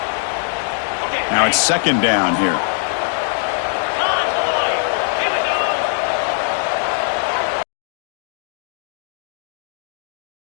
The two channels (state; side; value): silent; right; digital silence